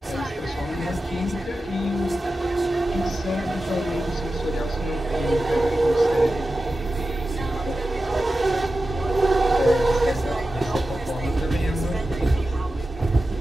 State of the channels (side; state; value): both; normal; correlation 0.93